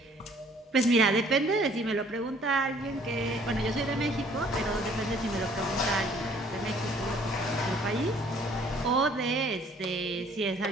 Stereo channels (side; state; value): both; normal; correlation 0.58